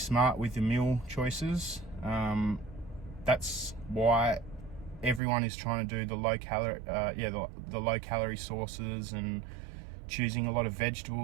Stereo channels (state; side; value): drops out; left; at 5.2 s